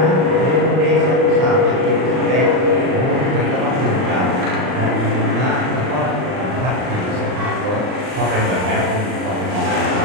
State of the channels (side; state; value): left; late; 39 ms